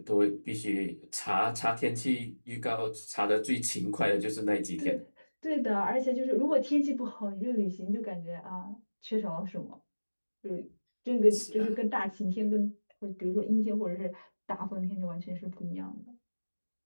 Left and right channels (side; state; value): both; inverted; correlation -1.00